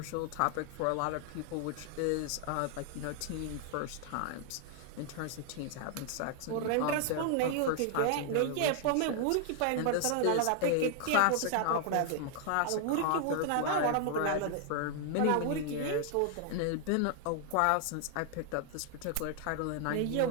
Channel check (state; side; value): different; both; correlation 0.00